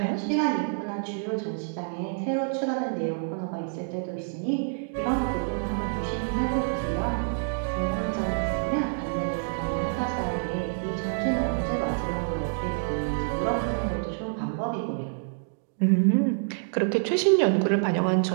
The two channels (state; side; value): silent; left; digital silence